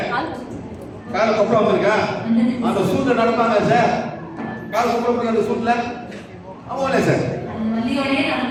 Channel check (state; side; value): identical; both; correlation 1.00